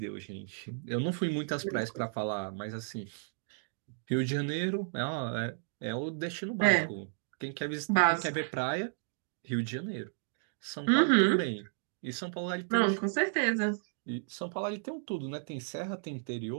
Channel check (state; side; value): silent; left; digital silence